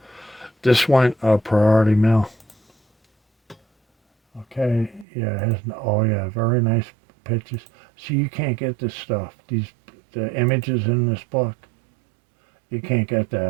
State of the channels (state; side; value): drops out; left; at 5.1 s